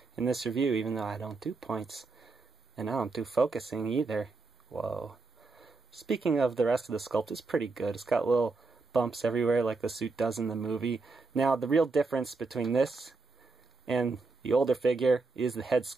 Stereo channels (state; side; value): quieter; left; 3.9 dB